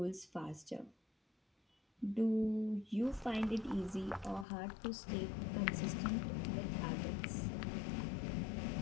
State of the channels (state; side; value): drops out; right; at 4.5 s